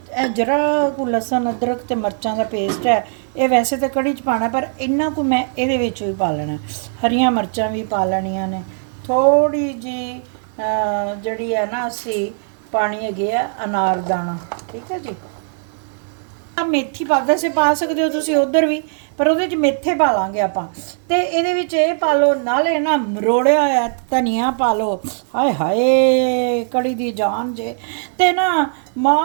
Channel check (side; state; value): left; silent; digital silence